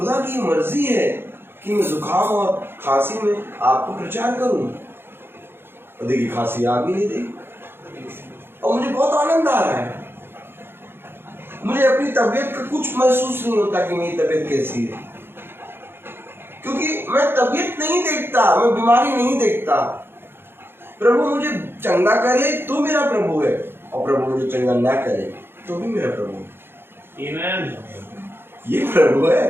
की मर्जी है कि मैं जुकाम और खांसी में आपको प्रचार करूं। और देखिए खांसी आ भी नहीं रही और मुझे बहुत आनंद आ रहा है। मुझे अपनी तबीयत का कुछ महसूस नहीं होता कि मेरी तबीयत कैसी है, क्योंकि मैं तबीयत नहीं देखता, मैं बीमारी नहीं देखता। प्रभु मुझे चंगा करे तो मेरा प्रभु है, और प्रभु मुझे चंगा ना करे तो भी मेरा प्रभु है। आमीन। ये प्रभु है।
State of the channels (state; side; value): late; left; 0.11 ms